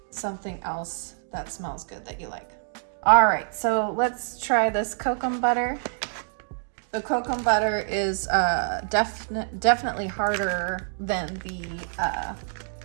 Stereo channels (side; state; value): left; silent; digital silence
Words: something else that smells good that you like. All right, so let's try this Kokum butter. The Kokum butter is definitely harder than the